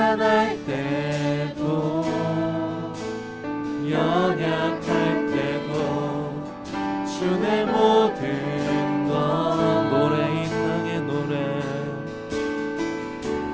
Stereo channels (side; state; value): both; identical; correlation 1.00